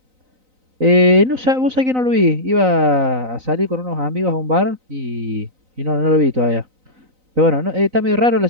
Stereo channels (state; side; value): late; left; 3.9 ms